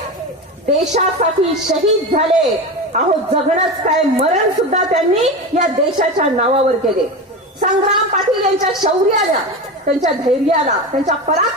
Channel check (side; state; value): both; normal; correlation 0.23